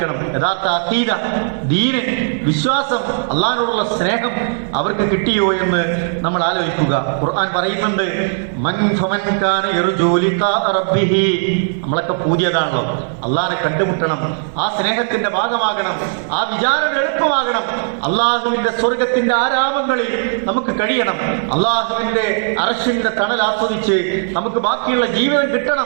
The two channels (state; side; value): silent; left; 68 dB below the other